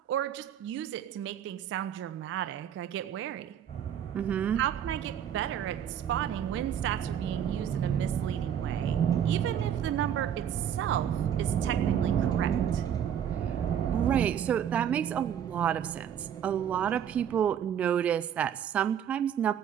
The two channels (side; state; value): left; quieter; 9.3 dB